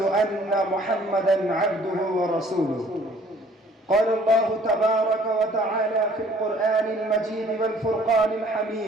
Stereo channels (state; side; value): normal; both; correlation 0.56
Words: أن محمدا عبده ورسوله. قال الله تبارك وتعالى في القرآن المجيد والفرقان